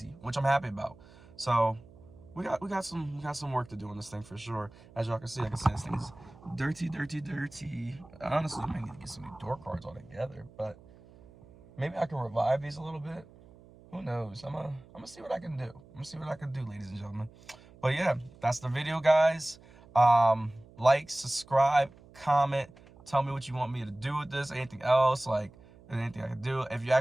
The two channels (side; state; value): right; noise; hum, 23 dB below the sound